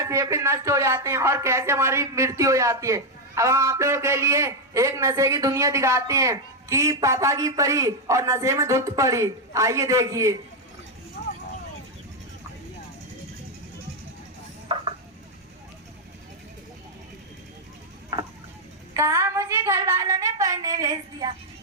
फेफड़े नष्ट हो जाते हैं और कैसे हमारी मृत्यु हो जाती है। अब हम आप लोगों के लिए एक नशे की दुनिया दिखाते हैं कि पापा की परी और नशे में धुत पड़ी। आइए देखिए। कहा मुझे घर वालों ने पढ़ने भेज दिया,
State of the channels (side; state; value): both; normal; correlation 0.02